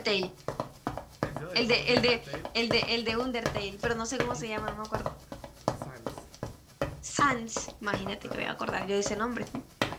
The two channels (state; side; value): identical; both; correlation 1.00